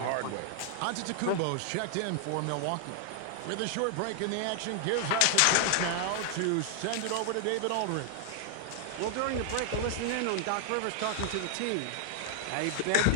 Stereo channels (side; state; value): both; different; correlation 0.00